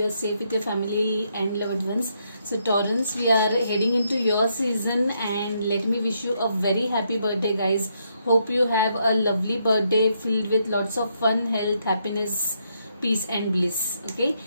are safe with your family and loved ones. So Taurans, we are heading into your season and let me wish you a very happy birthday guys. Hope you have a lovely birthday filled with lots of fun, health, happiness, peace and bliss. Okay,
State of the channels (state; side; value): inverted; both; correlation -0.77